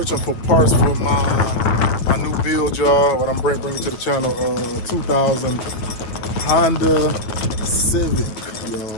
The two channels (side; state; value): right; late; 9.1 ms